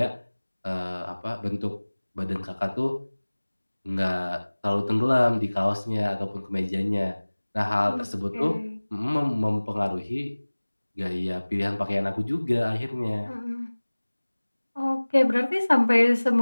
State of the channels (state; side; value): inverted; both; correlation -1.00